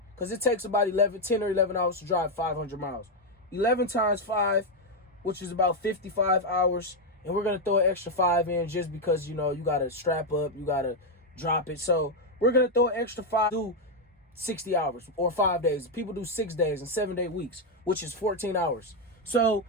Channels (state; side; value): normal; both; correlation 0.02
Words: because it takes about 10 or 11 hours to drive 500 miles. 11 times 5, which is about 55 hours. And we're gonna throw an extra 5 in just because, you know, you gotta strap up, you gotta drop it. So we're gonna throw an extra 5, do 60 hours or 5 days. People do 6 days and 7-day weeks, which is 14 hours. So